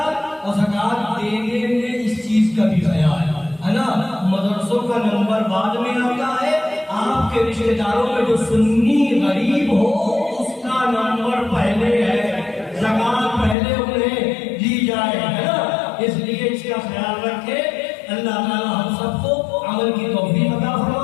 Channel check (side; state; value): right; drops out; at 13.6 s